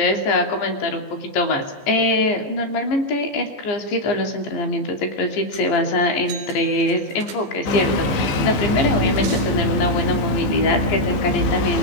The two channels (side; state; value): right; late; 15 ms